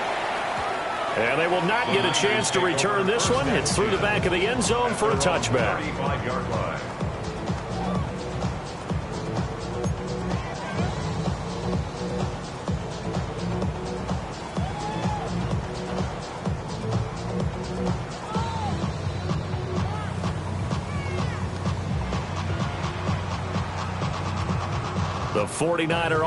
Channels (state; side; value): identical; both; correlation 1.00